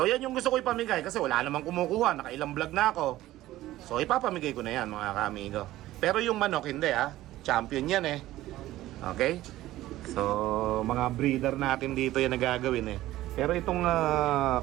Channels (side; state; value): left; quieter; 15.5 dB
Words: yan yung gusto ko ipamigay kasi wala namang kumukuha, nakailang vlog na ako. So ipapamigay ko na yan mga kaamigo. Pero yung manok hindi champion yan eh. Okay? So mga breeder natin dito yan nagagawin eh. Pero itong